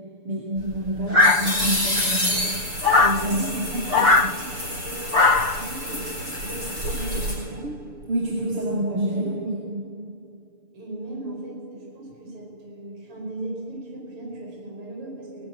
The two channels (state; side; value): late; left; 6.8 ms